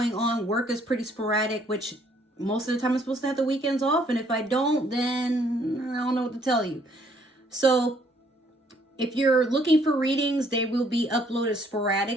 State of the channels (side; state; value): both; normal; correlation 0.65